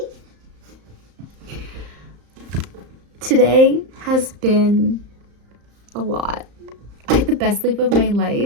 Today has been a lot. I had the best sleep of my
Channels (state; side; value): late; left; 34 ms